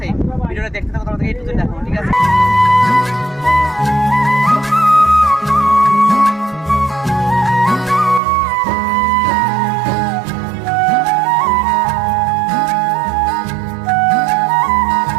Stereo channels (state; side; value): drops out; left; at 8.2 s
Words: ভিডিওটা দেখতে থাকো, তোমাদেরকে A to Z দেখাবো, ঠিক আছে।